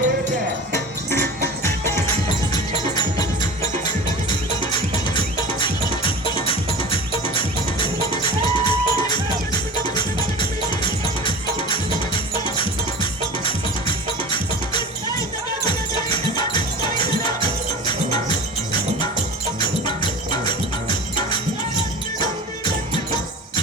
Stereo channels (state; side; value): normal; both; correlation 0.35